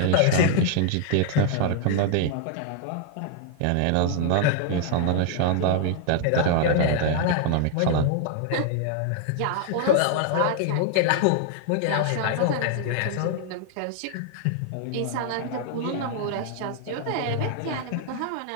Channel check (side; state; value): both; different; correlation 0.00